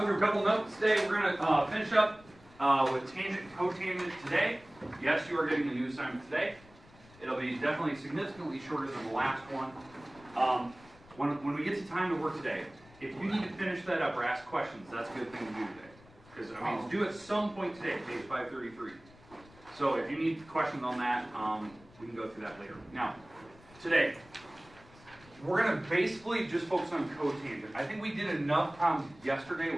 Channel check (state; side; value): noise; left; rumble, 24 dB below the sound